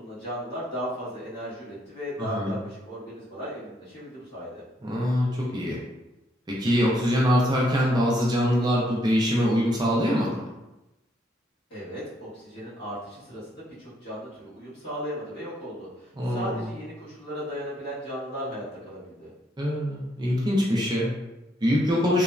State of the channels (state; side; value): normal; both; correlation 0.72